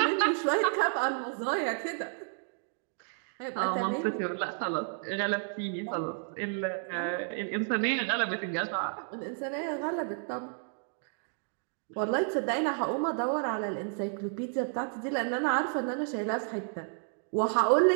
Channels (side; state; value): left; silent; 57 dB below the other